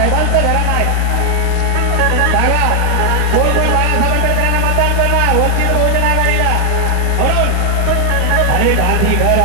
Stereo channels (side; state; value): both; different; correlation 0.00